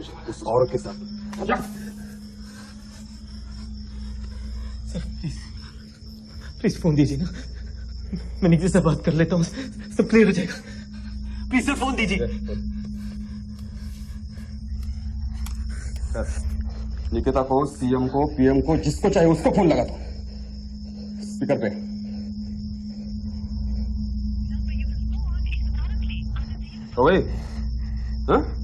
उस औरत के साथ। सर प्लीज फोन दीजिए ना, मैं निकिता से बात कर लेता हूँ, सब क्लियर हो जाएगा। प्लीज सर फोन दीजिए। निकिता को, सीएम को, पीएम को, जिसको चाहे उसको फोन लगा दो स्पीकर पे। तो भाई हाँ?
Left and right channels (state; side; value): identical; both; correlation 1.00